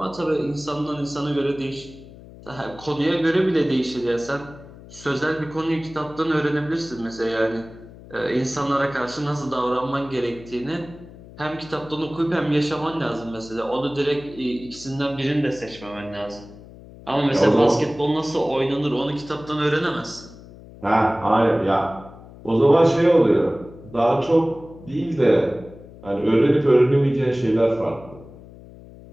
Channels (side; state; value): left; noise; hum, 19 dB below the sound